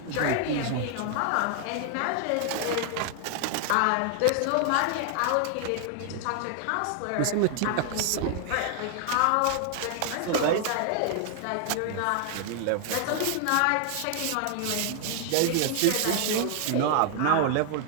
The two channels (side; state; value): both; different; correlation 0.00